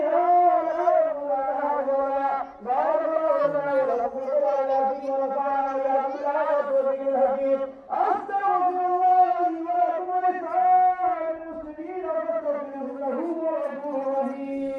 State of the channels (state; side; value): identical; both; correlation 1.00